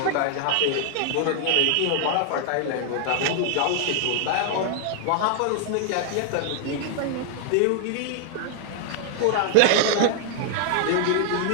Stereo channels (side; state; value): both; different; correlation 0.00